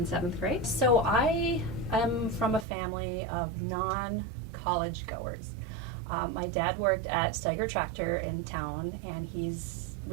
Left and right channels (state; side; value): drops out; left; at 2.7 s